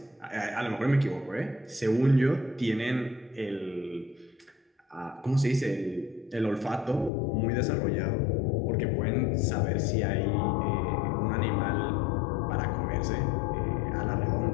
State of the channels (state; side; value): drops out; right; at 7.1 s